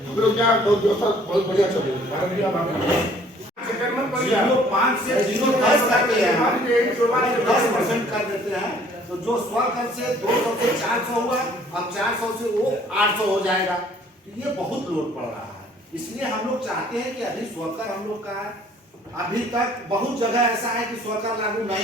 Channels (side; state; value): both; normal; correlation 0.57